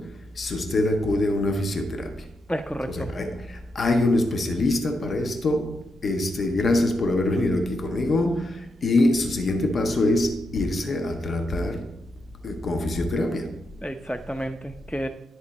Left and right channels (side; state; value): both; normal; correlation 0.84